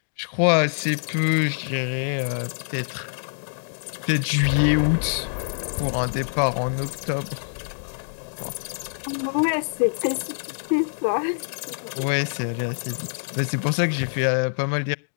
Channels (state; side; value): silent; right; digital silence